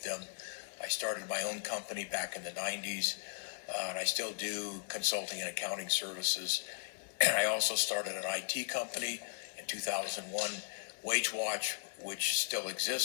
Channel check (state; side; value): silent; right; digital silence